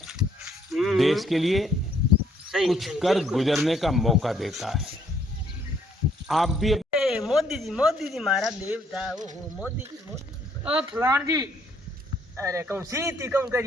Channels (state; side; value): normal; both; correlation 0.67